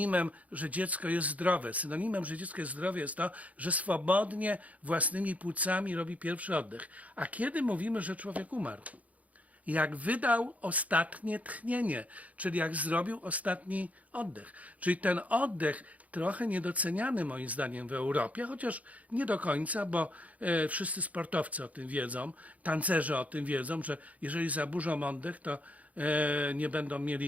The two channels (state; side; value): late; left; 0.070 ms